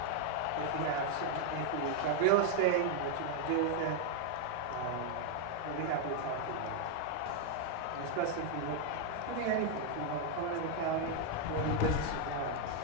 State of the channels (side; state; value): both; different; correlation 0.00